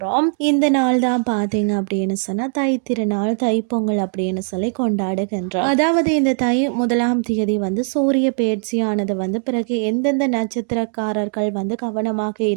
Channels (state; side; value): silent; left; 57 dB below the other